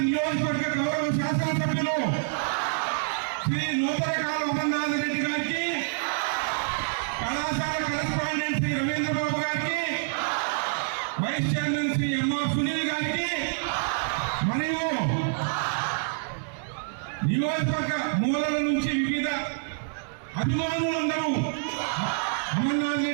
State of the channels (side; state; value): left; silent; 60 dB below the other